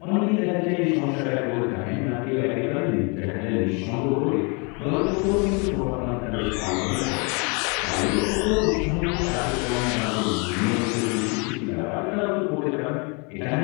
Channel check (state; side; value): quieter; right; 33.1 dB